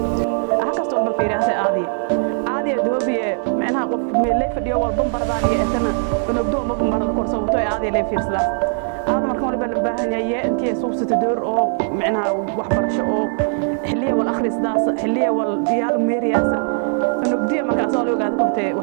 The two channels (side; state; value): left; silent; 62 dB below the other